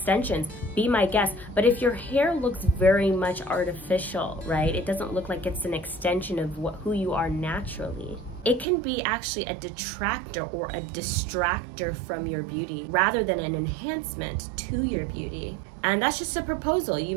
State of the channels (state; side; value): drops out; left; at 8.7 s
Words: be my guest. But if your hair looks very much artificial, right? It doesn't look like it's an extension of who you are naturally. It can be actually a detractor or a distractor from your beauty rather than an enhancement to your beauty. And that's just a proposal. You